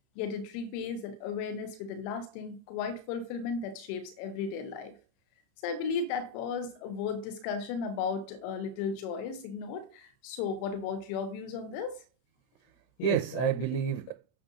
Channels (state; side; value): late; right; 31 ms